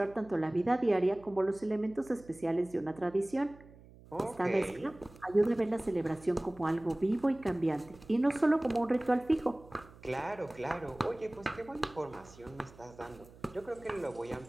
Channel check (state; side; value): noise; right; hum, 22 dB below the sound